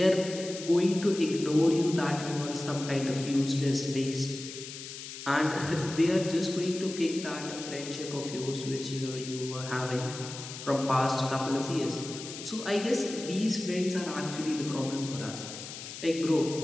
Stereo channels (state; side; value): noise; left; hiss, 11 dB below the sound